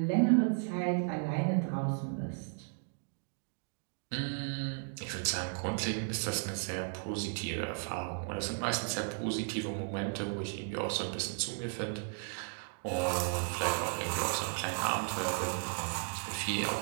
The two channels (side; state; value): left; silent; 54 dB below the other